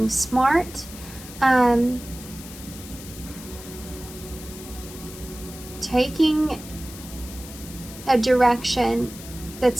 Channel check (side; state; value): left; noise; hiss, 15 dB below the sound